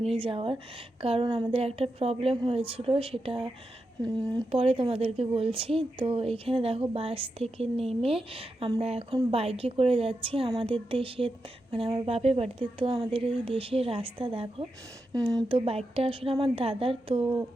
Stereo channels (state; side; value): normal; both; correlation 0.88